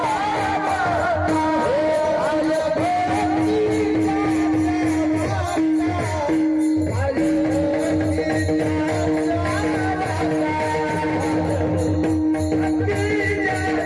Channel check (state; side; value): identical; both; correlation 1.00